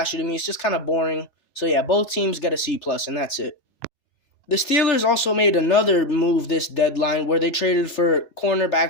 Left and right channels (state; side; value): late; right; 3.4 ms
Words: to me. It's just kind of boring. So yeah, both teams get a C plus, and that's it. The Steelers also made another move this deadline where they traded for